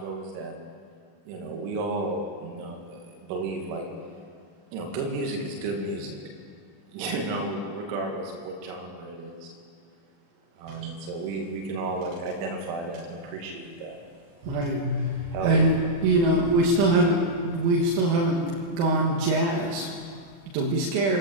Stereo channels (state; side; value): late; left; 36 ms